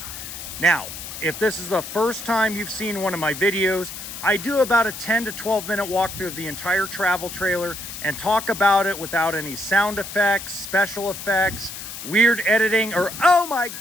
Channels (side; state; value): left; noise; hiss, 10 dB below the sound